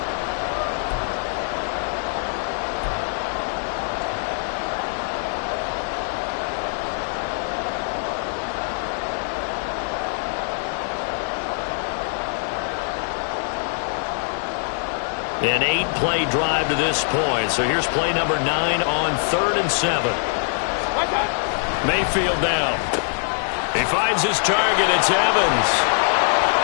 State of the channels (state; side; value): silent; right; digital silence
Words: An 8-play drive to this point. So here's play number 9 on 3rd and 7. Mayfield down. He finds his target. It's Evans.